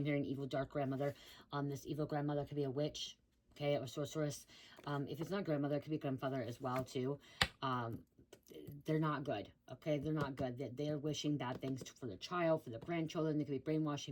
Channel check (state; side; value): identical; both; correlation 1.00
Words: hearing evil, dark grandmother. This evil grandmother could be a witch, okay, or sorceress. If it's not grandmother, it could be grandfather as well, too. They're not good, okay? They're not good. They're wishing bad things for the child, for the grandchildren. They could be